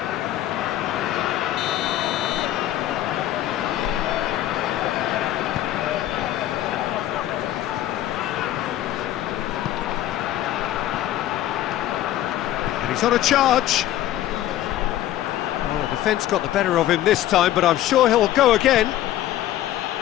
And he's on a charge. Well, the defence got the better of him this time, but I'm sure he'll go again.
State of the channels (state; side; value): quieter; right; 13.2 dB